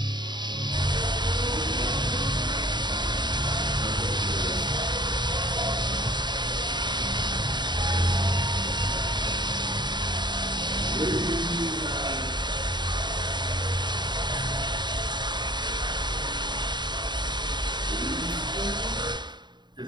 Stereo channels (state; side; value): late; left; 0.21 ms